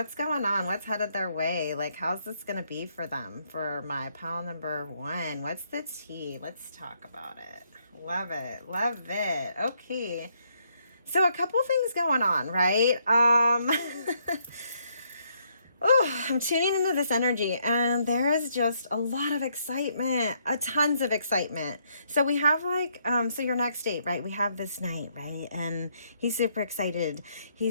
going on? What's headed their way? How's this gonna be for them? For my pile number 1, what's the tea? Let's talk about it. Love it. Love it. Okay. So a couple things going on, right? Oh, I'm tuning into this energy, and there is just a lot of excitement, tons of excitement. So we have so your next date, right? We have this night, right? And he's super excited.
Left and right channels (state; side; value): inverted; both; correlation -0.73